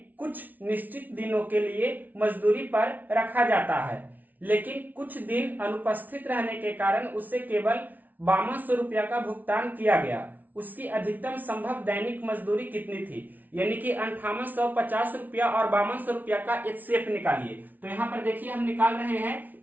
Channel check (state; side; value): late; left; 0.080 ms